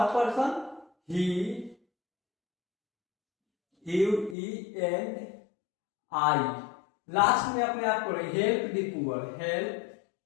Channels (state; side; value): drops out; right; at 4.4 s